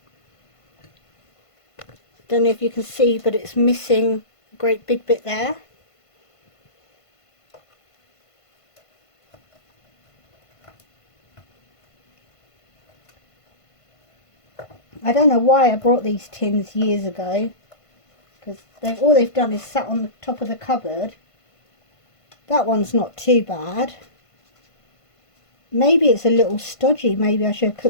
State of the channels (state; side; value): late; right; 1.5 ms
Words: Don't know if you can see, but it's missing a great big bit there. I don't know why I brought these tins years ago, because all they've done is sat on the top of the cupboard. That one's not too bad. Maybe it's a little stodgy. Maybe I should have